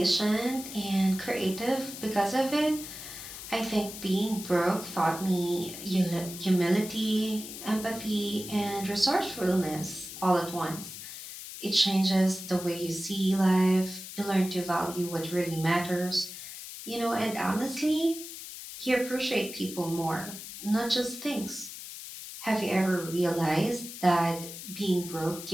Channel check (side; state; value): left; noise; hiss, 11 dB below the sound